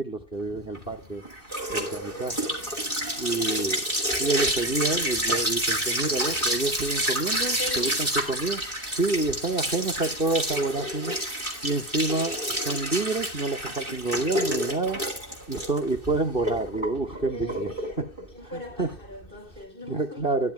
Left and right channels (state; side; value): late; right; 2.6 ms